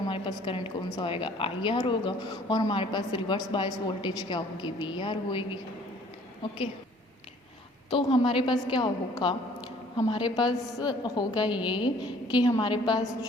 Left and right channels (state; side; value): normal; both; correlation 0.56